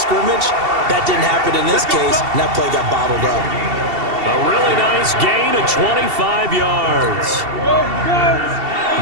That didn't happen in this case, and that play got bottled up. A really nice gain of 25 yards.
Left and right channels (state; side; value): late; left; 2.7 ms